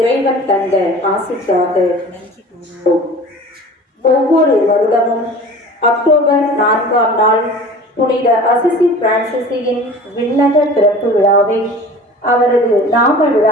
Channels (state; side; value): normal; both; correlation 0.41